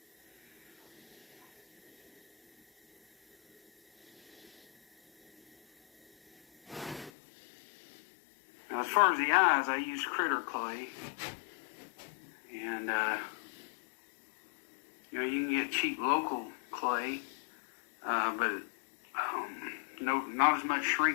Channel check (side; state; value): right; drops out; at 7.1 s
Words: Now, as far as the eyes, I use critter clay. And, you know, you can get cheap local clay, but not as much